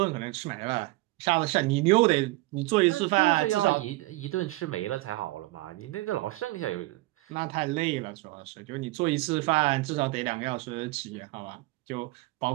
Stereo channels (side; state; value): left; quieter; 20.8 dB